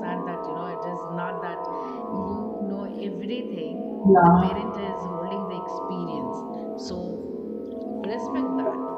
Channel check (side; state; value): both; identical; correlation 1.00